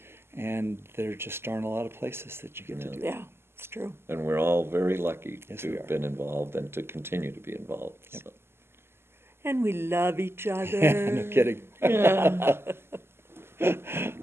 there just aren't a lot of places that you get to do that. Yeah, it's true. And we're all very lucky Yes, to we have are. been involved and to continue to be involved. Yep. So. And we love each other. No kidding.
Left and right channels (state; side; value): late; left; 0.12 ms